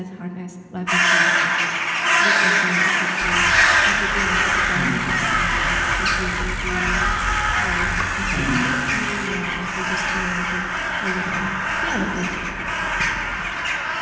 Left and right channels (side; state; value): both; identical; correlation 1.00